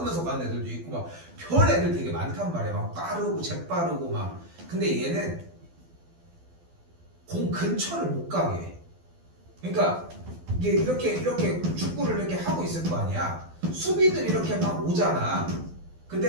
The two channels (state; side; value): late; left; 12 ms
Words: 가는 애들도 있고 막 별 애들 되게 많단 말이야. 막 빠르고 재빠르고 막. 근데 얘는 공 근처를 못 가게 해. 그러니까 이게 이렇게 축구를 이렇게 하고 있을 거 아니야. 수비들이 이렇게 막 오잖아.